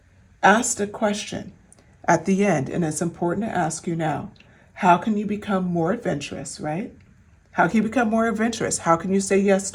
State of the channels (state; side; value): identical; both; correlation 1.00